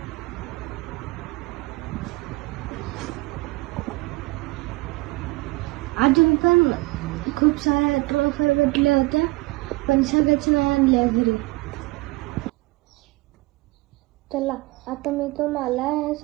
अजून पण खूप साऱ्या ट्रॉफी भेटल्या होत्या, पण सगळ्याच नाही आणल्या घरी. चला आता मी तुम्हाला हे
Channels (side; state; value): left; quieter; 22.7 dB